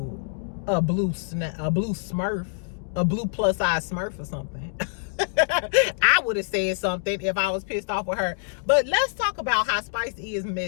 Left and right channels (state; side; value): silent; right; digital silence